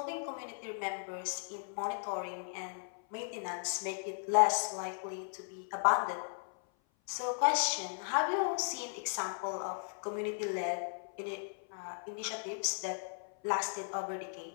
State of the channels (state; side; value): silent; right; 53 dB below the other